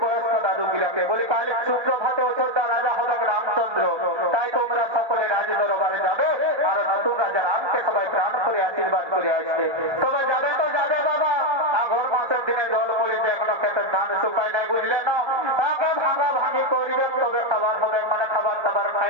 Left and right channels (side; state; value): left; late; 1.2 ms